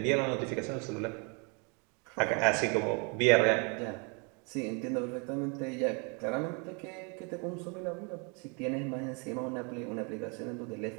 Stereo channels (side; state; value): left; quieter; 33.9 dB